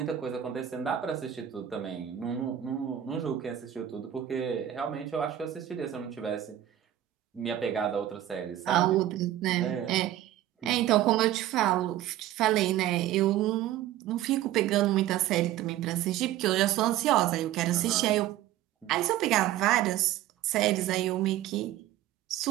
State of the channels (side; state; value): left; quieter; 12.6 dB